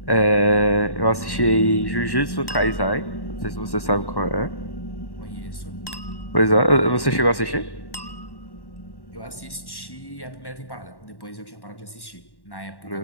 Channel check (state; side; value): late; right; 1.1 ms